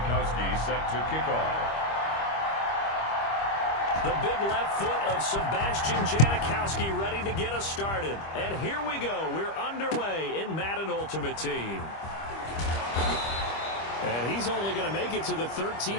set to kick off. The big left foot of Sebastian Janikowski ready to get us started. And here we go. We're underway in Madden Ultimate Team. And he's only going to make it to the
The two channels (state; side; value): late; right; 25 ms